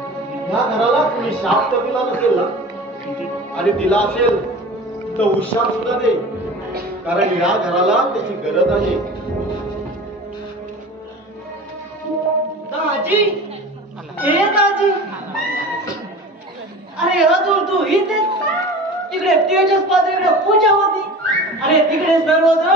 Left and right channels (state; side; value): normal; both; correlation 0.37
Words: या घराला तुम्ही शाप तर दिला नसेल ना, आणि दिला असेल तर हुशार सुद्धा दे, कारण या घराला त्याची गरज आहे. दाजी, हे दाजी, अरे अजून तू इथेच? तिकडे तेजस पात्रीकडे पूजा होती. अरे तिकडे